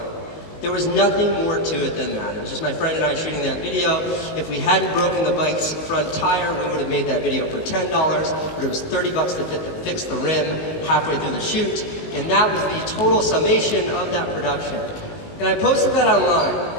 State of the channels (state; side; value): late; right; 19 ms